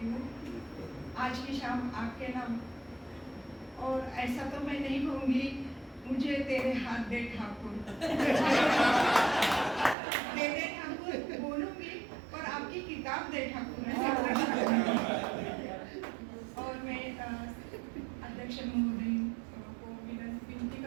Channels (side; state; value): left; drops out; at 10.0 s